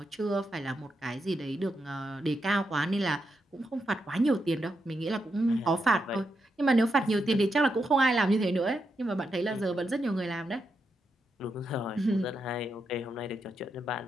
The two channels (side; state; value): both; normal; correlation 0.84